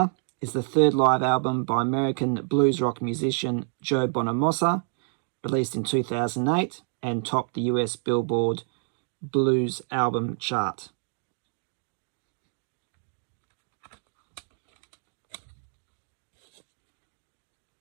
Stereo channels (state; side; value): silent; left; 59 dB below the other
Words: is the third live album by American blues rock musician Joe Bonamassa, released in 2008 and topped the US Billboard Blues Album chart.